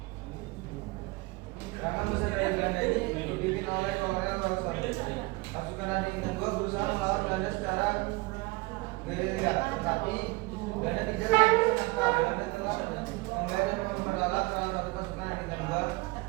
Serangan besar dari Belanda ini dipimpin oleh Kolonel Wilson. Pasukan Adik Tenggo berusaha melawan Belanda secara gerilya, tetapi Belanda tidak Belanda telah menggait dan memperalat salah satu pasukan dari Bintang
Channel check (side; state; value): left; quieter; 23.5 dB